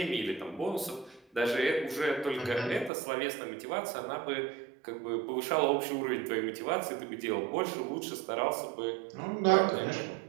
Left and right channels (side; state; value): left; drops out; at 2.9 s